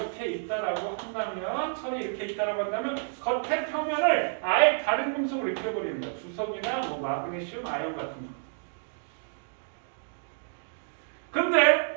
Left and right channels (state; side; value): silent; left; digital silence